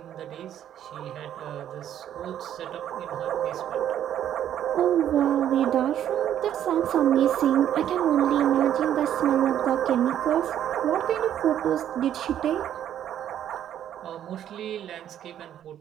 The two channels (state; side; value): quieter; left; 10.6 dB